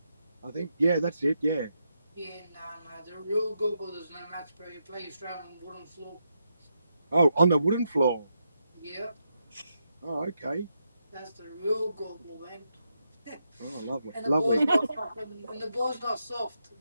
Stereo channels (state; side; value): inverted; both; correlation -0.83